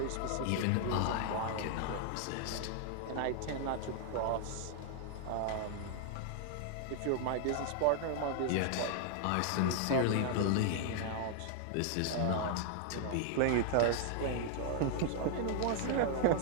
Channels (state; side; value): different; both; correlation 0.00